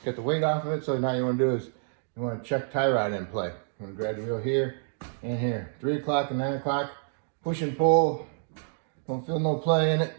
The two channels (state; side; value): silent; left; digital silence